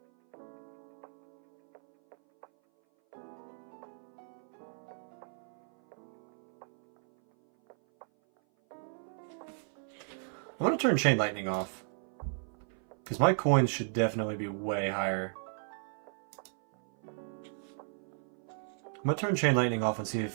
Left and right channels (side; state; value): left; silent; 55 dB below the other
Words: I'm going to turn Chain Lightning off, because my coins should definitely be way higher. I'm going to turn Chain Lightning off and see